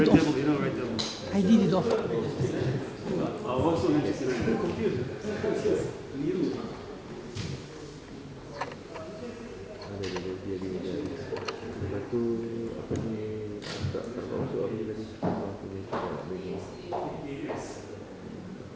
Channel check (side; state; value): both; identical; correlation 1.00